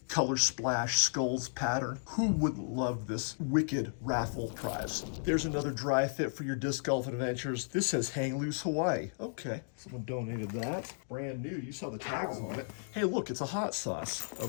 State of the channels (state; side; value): silent; right; digital silence